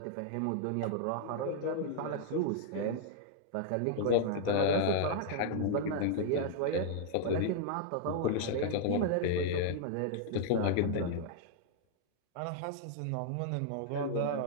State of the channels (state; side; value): different; both; correlation -0.01